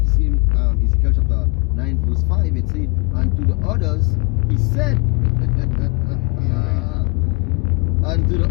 same Ezekiel chapter 9 verse 5, it says, and to the others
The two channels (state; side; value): quieter; right; 30.1 dB